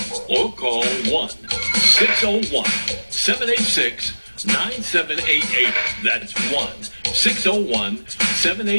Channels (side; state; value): both; inverted; correlation -1.00